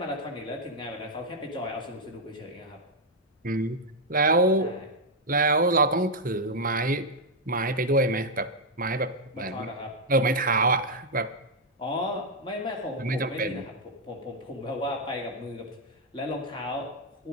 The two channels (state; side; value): normal; both; correlation -0.01